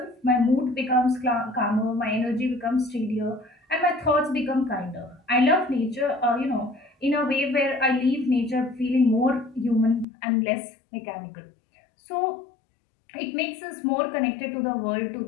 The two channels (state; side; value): drops out; right; at 10.1 s